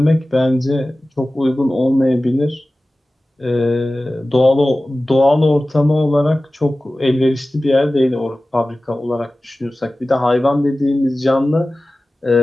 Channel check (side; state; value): both; normal; correlation 0.96